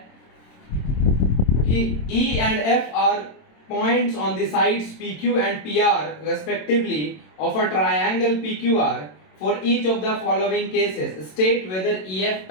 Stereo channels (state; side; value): late; right; 27 ms